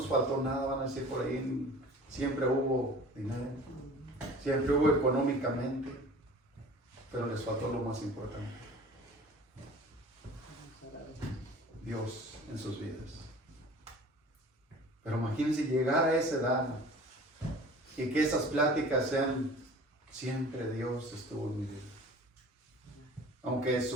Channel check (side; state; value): both; normal; correlation 0.44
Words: faltó nada, van a decir por ahí, siempre hubo dinero, siempre hubo económicamente, pero les faltó lo más importante: Dios en sus vidas. Pero imagínense llegar a esa edad y que esas pláticas sean siempre Dios estuvo en mi vida. Aunque